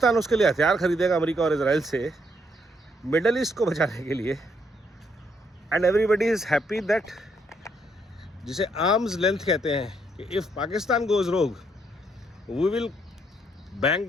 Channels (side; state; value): both; normal; correlation 0.73